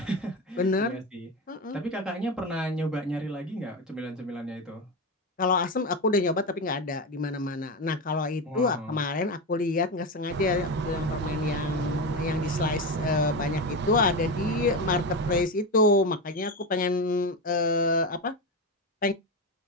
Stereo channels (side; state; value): both; normal; correlation 0.17